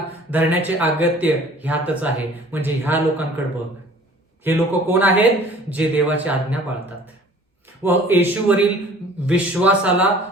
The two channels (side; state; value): both; normal; correlation 0.50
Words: धरण्याचे अगत्य ह्यातच आहे. म्हणजे ह्या लोकांकडे बघ. हे लोक कोण आहेत? जे देवाची आज्ञा पाळतात व येशूवरील विश्वासाला